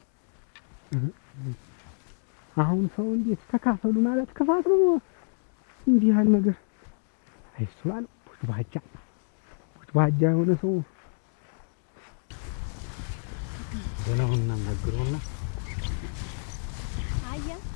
አሁን ሰው እንዴት ተካፈሉ ማለት ክፋት ነው። እንዲህ ያህል ነገር አይሱላል ባጃ የሆነ ሰው ደህናውን እናናግረውና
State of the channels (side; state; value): right; silent; 59 dB below the other